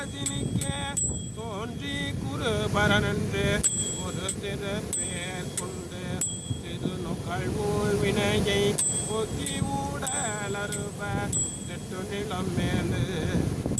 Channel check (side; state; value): both; identical; correlation 1.00